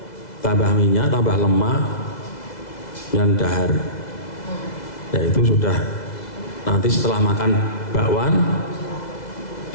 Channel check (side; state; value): right; late; 2.0 ms